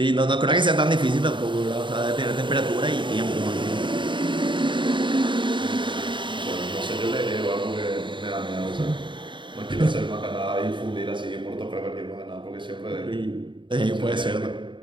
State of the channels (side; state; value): left; late; 0.23 ms